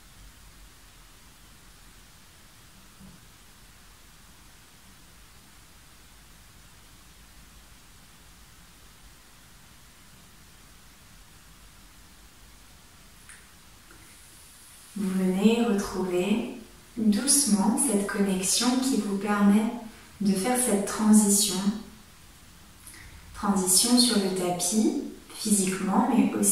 Vous venez retrouver doucement cette connexion qui vous permet de faire cette transition sur le tapis, physiquement, mais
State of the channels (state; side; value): identical; both; correlation 1.00